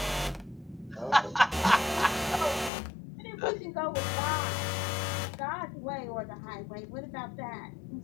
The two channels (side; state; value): right; drops out; at 2.7 s